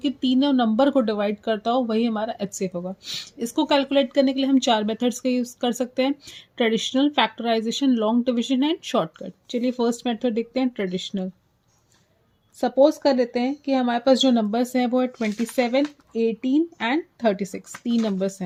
तीनों नंबर को डिवाइड करता हो, वही हमारा एचसीएफ होगा। इसको कैलकुलेट करने के लिए हम 4 मेथड्स का यूज़ कर सकते हैं: traditional, factorization, long division and shortcut. चलिए फर्स्ट मेथड देखते हैं, ट्रेडिशनल। सपोज कर लेते हैं कि हमारे पास जो नंबर्स हैं वो है 27, 18 एंड 36। 3 नंबर्स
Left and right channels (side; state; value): both; identical; correlation 1.00